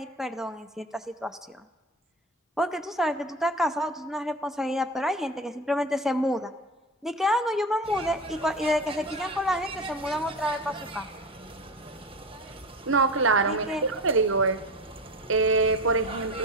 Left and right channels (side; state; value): both; normal; correlation 0.28